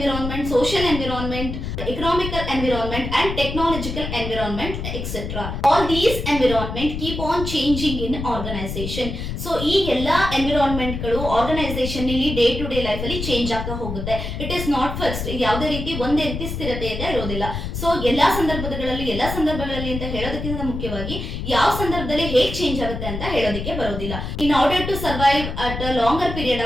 social environment, economical environment and technological environment, etc. All these environment keep on changing in organization. So ಈ ಎಲ್ಲಾ environment ಗಳು organization ನಲ್ಲಿ day to day life ಅಲ್ಲಿ ಚೇಂಜ್ ಆಗ್ತಾ ಹೋಗುತ್ತೆ. It is not fixed. ಯಾವುದೇ ರೀತಿ ಒಂದೇ ರೀತಿ ಸ್ಥಿರತೆ ಅಂತ ಇರೋದಿಲ್ಲ. ಸೊ ಎಲ್ಲಾ ಸಂದರ್ಭಗಳಲ್ಲಿ ಅಂತ ಹೇಳೋದಕ್ಕಿಂತ ಮುಖ್ಯವಾಗಿ ಯಾವ ಸಂದರ್ಭದಲ್ಲಿ ಹೇಗೆ ಚೇಂಜ್ ಆಗುತ್ತೆ ಅಂತ ಹೇಳೋದಕ್ಕೆ ಬರೋದಿಲ್ಲ. In order to survive at a longer period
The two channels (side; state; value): left; noise; rumble, 5 dB below the sound